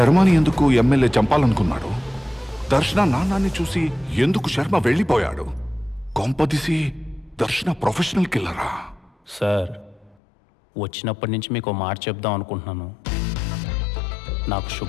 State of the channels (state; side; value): drops out; right; at 10.2 s